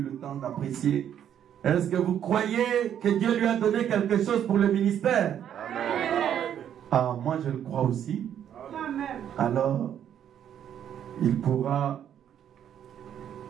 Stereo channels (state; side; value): quieter; left; 9.7 dB